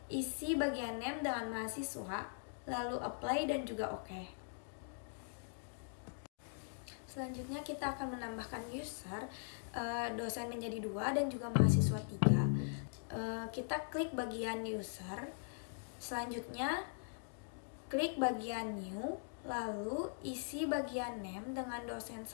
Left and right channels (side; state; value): right; silent; digital silence